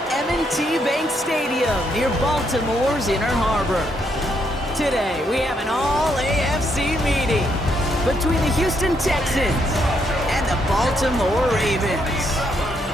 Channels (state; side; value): normal; both; correlation 0.75